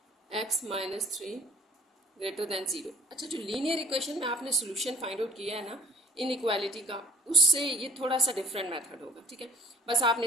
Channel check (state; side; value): normal; both; correlation 0.56